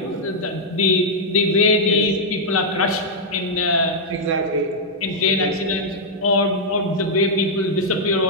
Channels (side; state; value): both; normal; correlation -0.05